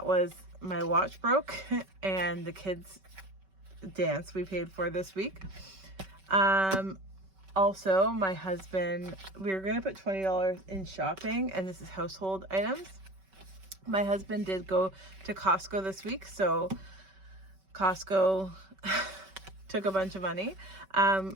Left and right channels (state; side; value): late; left; 5.2 ms